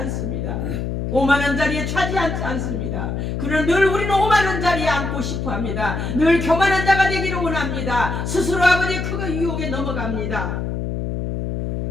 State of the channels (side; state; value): left; noise; hum, 3 dB below the sound